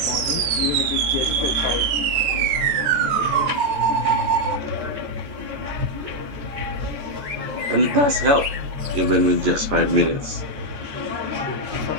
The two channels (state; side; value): late; left; 14 ms